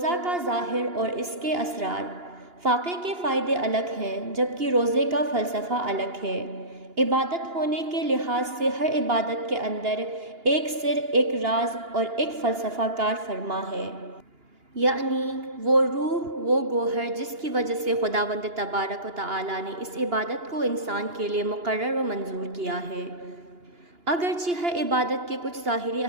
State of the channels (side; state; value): left; late; 2.9 ms